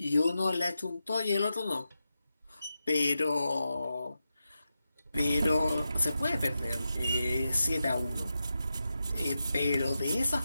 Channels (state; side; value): inverted; both; correlation -0.89